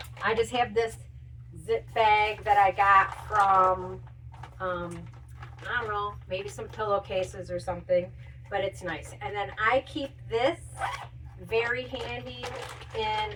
I just have this zip bag that I got from I don't know, maybe some pillowcases or something, but it's nice. And then I keep this very handy, and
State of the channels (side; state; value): both; identical; correlation 1.00